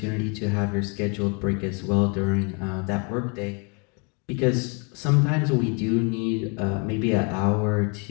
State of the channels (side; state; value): right; quieter; 34.6 dB